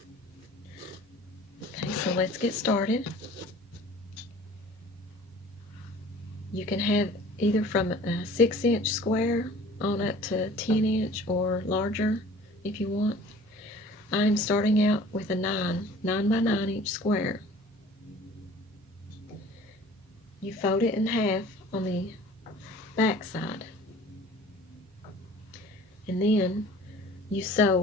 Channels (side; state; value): both; normal; correlation 0.47